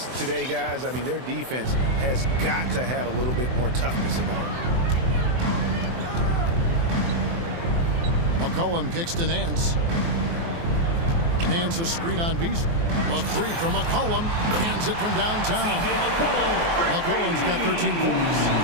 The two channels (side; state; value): left; late; 24 ms